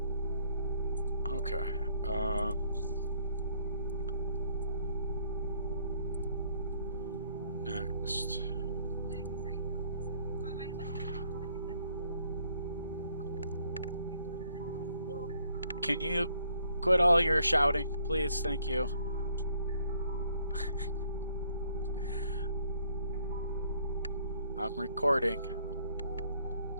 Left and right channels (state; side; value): inverted; both; correlation -0.67